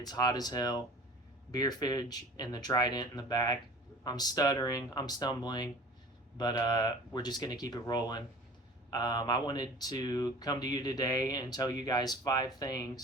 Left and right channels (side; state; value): both; normal; correlation 0.43